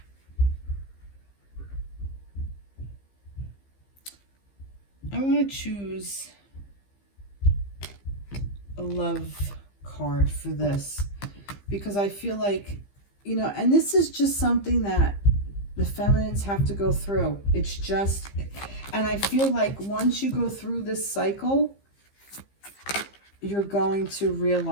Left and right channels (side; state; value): right; late; 15 ms